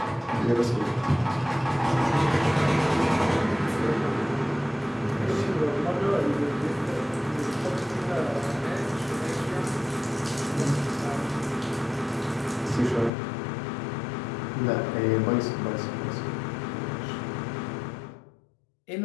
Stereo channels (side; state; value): right; drops out; at 13.1 s